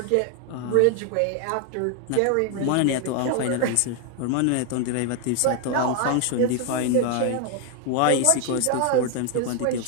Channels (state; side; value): different; both; correlation 0.01